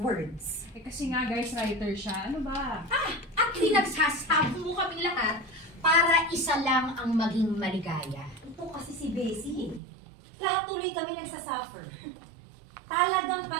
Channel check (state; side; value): drops out; left; at 9.8 s